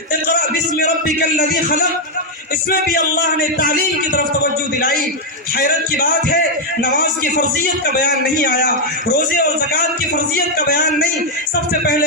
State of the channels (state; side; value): normal; both; correlation 0.00